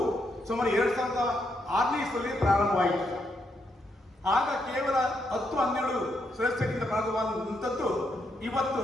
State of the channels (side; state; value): both; normal; correlation 0.78